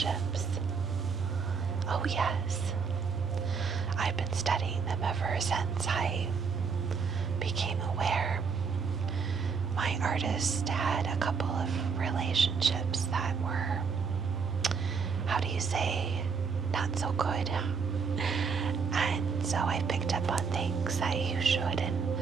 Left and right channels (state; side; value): quieter; left; 5.6 dB